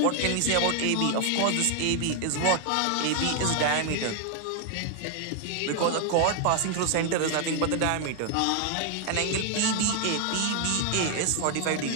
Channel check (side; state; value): both; different; correlation 0.00